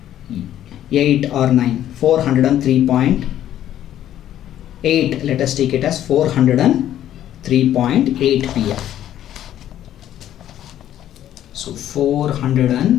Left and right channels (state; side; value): quieter; right; 11.7 dB